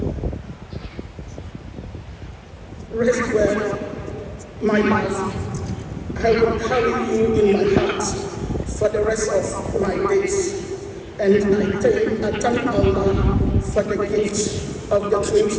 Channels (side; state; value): both; identical; correlation 1.00